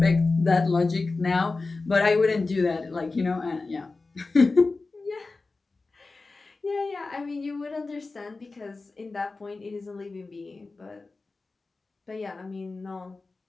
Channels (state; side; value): quieter; right; 3.7 dB